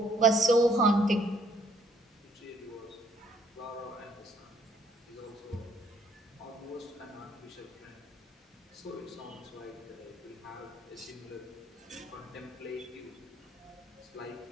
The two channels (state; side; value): normal; both; correlation 0.66